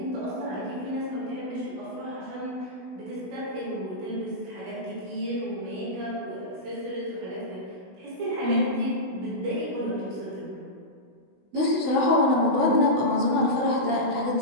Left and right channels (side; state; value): left; late; 16 ms